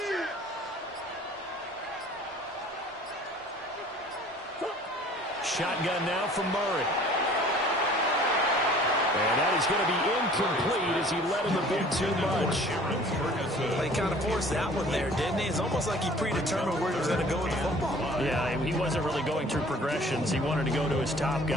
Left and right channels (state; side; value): normal; both; correlation 0.50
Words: Shotgun now from Murray. And that is going to be incomplete as he let him a bit too much. Well, he kind of forced that one there, didn't he? It's almost like he predetermined where he was going to go with the football. Yeah, he wasn't really going through progressions. He wanted to go to his top